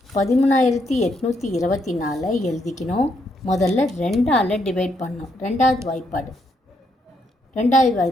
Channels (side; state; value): both; normal; correlation 0.76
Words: 13,824 எழுதிக்கணும். முதல்ல 2ஆல் டிவைட் பண்ணணும். ரெண்டாவது